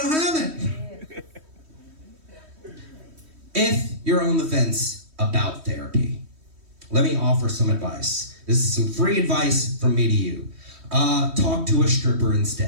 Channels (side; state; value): left; late; 3.1 ms